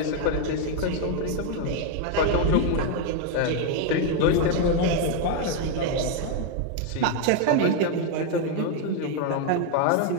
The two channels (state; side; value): different; both; correlation 0.01